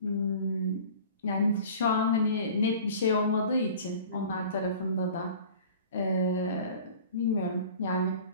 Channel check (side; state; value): both; inverted; correlation -0.43